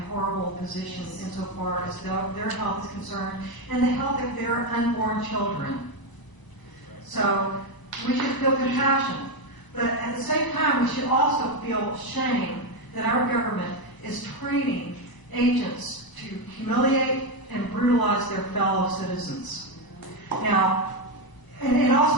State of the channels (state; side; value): late; right; 1.0 ms